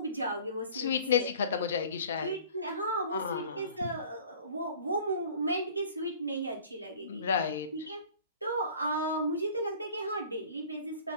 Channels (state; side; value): inverted; both; correlation -0.48